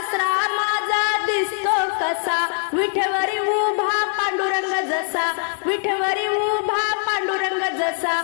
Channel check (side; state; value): right; silent; 64 dB below the other